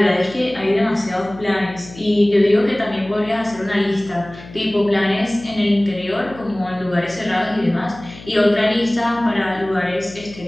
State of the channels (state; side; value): noise; left; hum, 18 dB below the sound